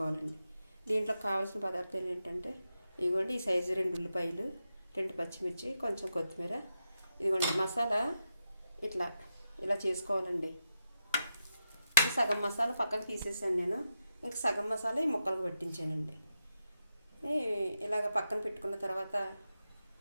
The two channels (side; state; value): both; inverted; correlation -0.87